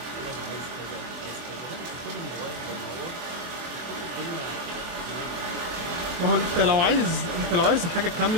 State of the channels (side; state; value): left; late; 24 ms